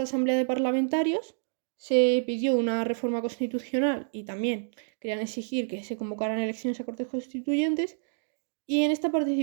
asamblea de parlamentarios se pidió una reforma constitucional y también querían exigir que se convocaran elecciones a Cortes Constituyentes. Y en esta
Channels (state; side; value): silent; left; digital silence